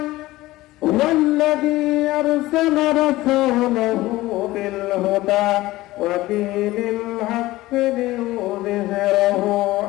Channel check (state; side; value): quieter; right; 17.8 dB